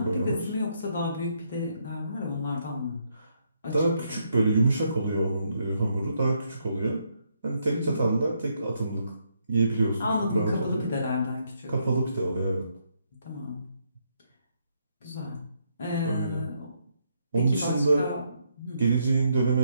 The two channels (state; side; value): inverted; both; correlation -0.76